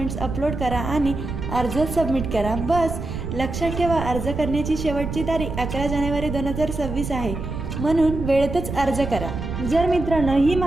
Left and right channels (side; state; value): right; noise; rumble, 6 dB below the sound